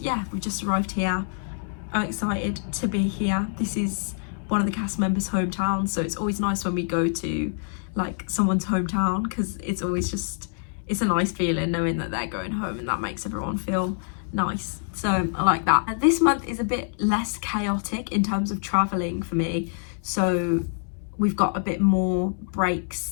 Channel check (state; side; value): silent; right; 61 dB below the other